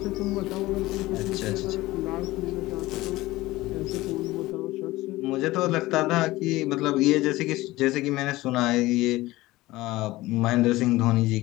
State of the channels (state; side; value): quieter; right; 18.6 dB